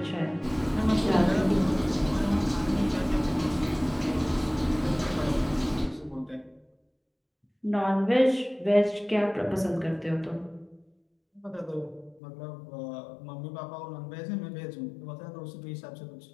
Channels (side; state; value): right; drops out; at 12.2 s